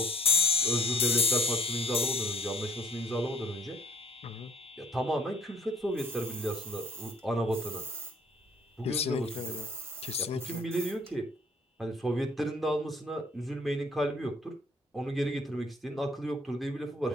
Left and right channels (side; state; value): both; normal; correlation 0.58